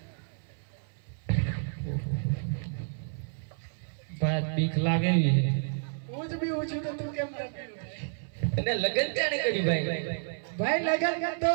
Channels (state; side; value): silent; left; 58 dB below the other